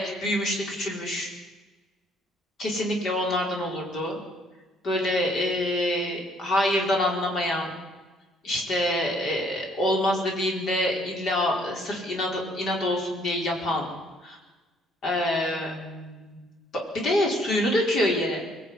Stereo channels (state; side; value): normal; both; correlation 0.63